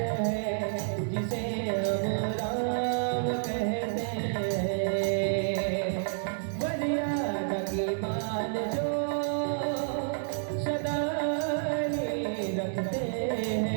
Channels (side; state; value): left; silent; 58 dB below the other